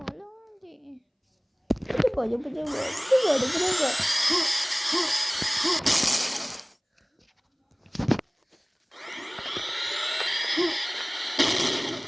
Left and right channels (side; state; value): both; identical; correlation 1.00